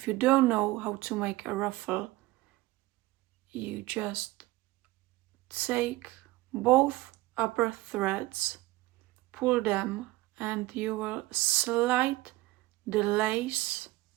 you don't know how to make a ruffle, you just take both upper threads, pull them, and you will slide the lace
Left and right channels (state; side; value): quieter; left; 18.9 dB